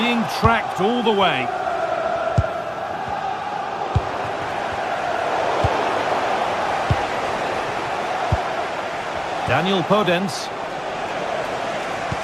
tracked all the way. Daniel Podence.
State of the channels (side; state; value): both; identical; correlation 1.00